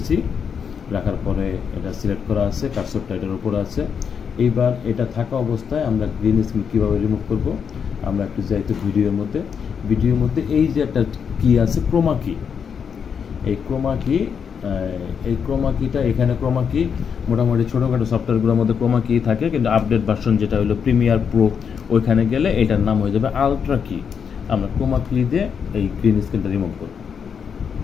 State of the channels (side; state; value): right; quieter; 6.9 dB